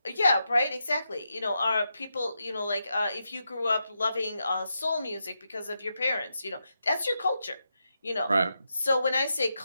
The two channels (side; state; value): both; inverted; correlation -0.86